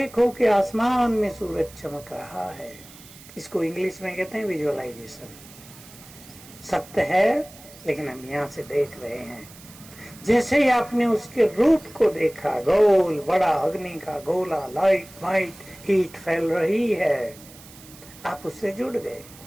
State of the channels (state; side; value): noise; right; hiss, 20 dB below the sound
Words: कि आसमान में सूरज चमक रहा है। इसको इंग्लिश में कहते हैं विजुअलाइजेशन। सत्य है लेकिन हम यहाँ से देख रहे हैं। जैसे ही आपने उसके रूप को देखा, गोल बड़ा अग्नि का गोला, लाइट वाइट हीट फैल रही है, आप उससे जुड़ गए,